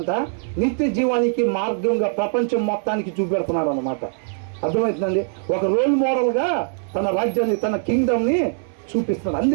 నిత్య జీవానికి మార్గంగా ప్రపంచం మొత్తానికి చూపెడుతున్నాడు అన్నమాట. అర్థమవుతుందండి? ఒక రోల్ మోడల్గా తన రాజ్యాన్ని, తన కింగ్డమ్ని చూపిస్తున్నాడు.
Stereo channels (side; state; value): left; silent; 59 dB below the other